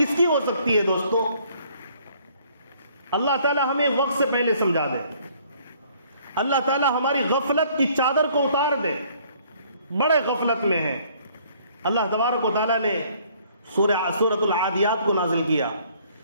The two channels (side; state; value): both; inverted; correlation -0.61